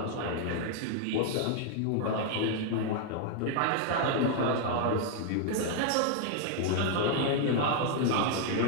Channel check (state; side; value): different; both; correlation 0.00